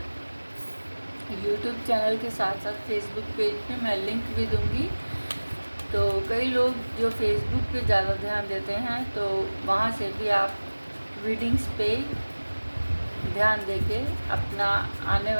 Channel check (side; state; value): both; inverted; correlation -1.00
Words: YouTube चैनल के साथ साथ फेसबुक पेज पे मैं लिंक भी दूँगी। तो कई लोग जो फेसबुक पे ज़्यादा ध्यान देते हैं, तो वहाँ से भी आप रीडिंग्स पे ध्यान देके अपना आने